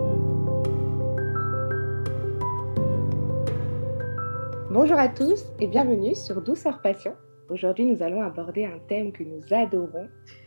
Bonjour à tous et bienvenue sur Douceur Passion. Aujourd'hui, nous allons aborder un thème que nous adorons,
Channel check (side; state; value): both; inverted; correlation -1.00